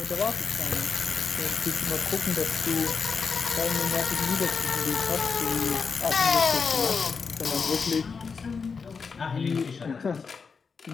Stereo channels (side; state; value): right; quieter; 5.3 dB